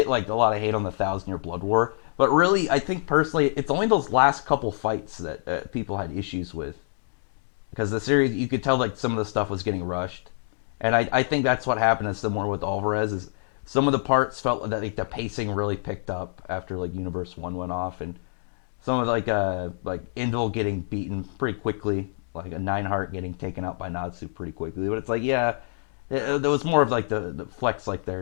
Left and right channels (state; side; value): silent; right; digital silence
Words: like a lot of hate on the Thousand Year Blood War, but really, I think personally, it's only those last couple fights that people had issues with because the series you could tell like some of the stuff was getting rushed, and I think that's what happened is similar with Alvarez is some of the parts felt that like the pacing really picked up after like Universe One went off, and some of like Indel getting beaten pretty quickly, like a Nineheart getting taken out by Natsu pretty quickly. But it's like yeah, there was more of like the flex like